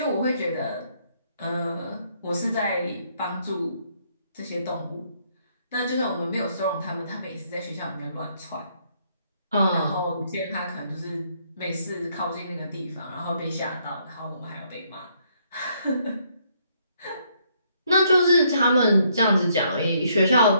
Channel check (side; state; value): both; inverted; correlation -0.70